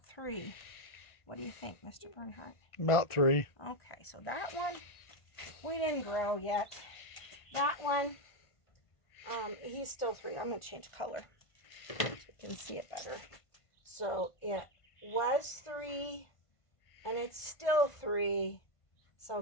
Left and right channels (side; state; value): right; late; 1.5 ms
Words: 3. What do you think, Mr. Bernhardt? About 3. Okay, so that one, we didn't grow yet. That one, he's still 3. I'm going to change color so you can see it better. So it was 3, and it's still 3.